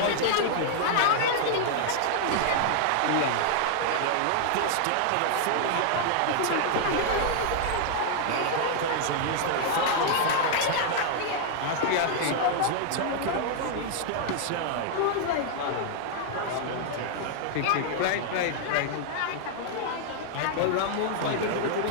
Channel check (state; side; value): different; both; correlation 0.00